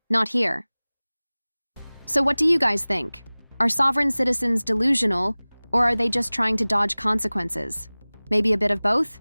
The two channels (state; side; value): inverted; both; correlation -1.00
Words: Not here. So what do you guys think? Are sovereign citizens delusional, or are they just trying to dodge consequences? Maybe a bit of both?